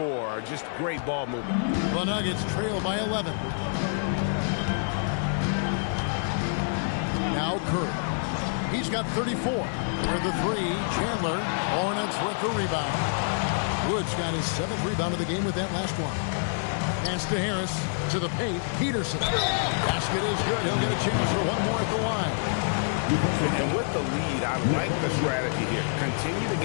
Just great ball movement. The Nuggets trail by 11. Now Curry. He's got 34. For the three, Chandler. Hornets with the rebound. Woods got his 7th rebound of the game with that last one. Pass to Harris. To the paint. Peterson. Basket is good. He'll get a chance for one more at the line. And with the lead, I like the strategy here. Continue to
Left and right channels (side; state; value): right; silent; 60 dB below the other